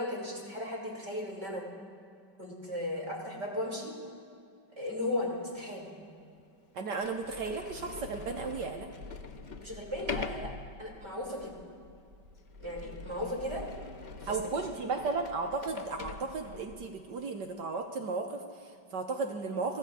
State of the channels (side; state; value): left; late; 5.2 ms